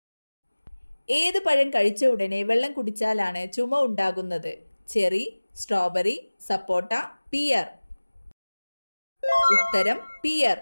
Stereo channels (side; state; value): both; inverted; correlation -1.00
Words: ഏത് പഴം കഴിച്ച ഉടനെ വെള്ളം കുടിച്ചാലാണ് ചുമ ഉണ്ടാകുന്നത്? ചെറി, സ്ട്രോബെറി, സപ്പോട്ട, പിയർ. ഉത്തരം പിയർ.